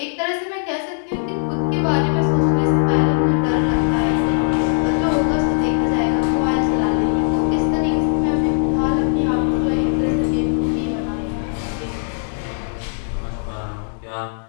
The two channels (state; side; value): silent; right; digital silence